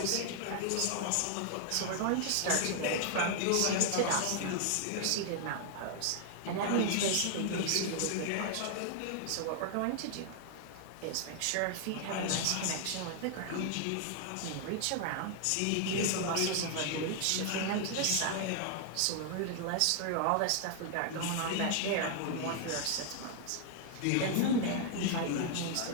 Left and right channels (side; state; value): both; different; correlation 0.00